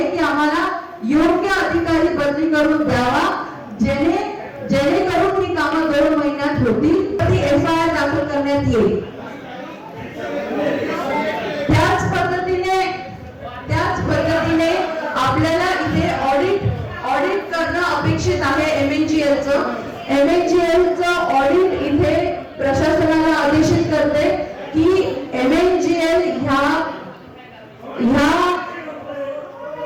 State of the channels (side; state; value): both; identical; correlation 1.00